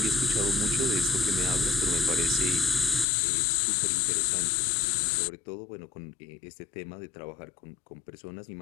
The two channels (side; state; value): right; drops out; at 3.1 s